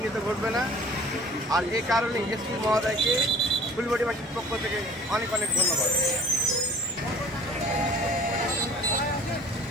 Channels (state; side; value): normal; both; correlation 0.50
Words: ঘটবে না। আর এই কারণে এসপি মহোদয়কে ফুলবাড়িবাসীর পক্ষ থেকে অনেক অনেক ধন্যবাদ।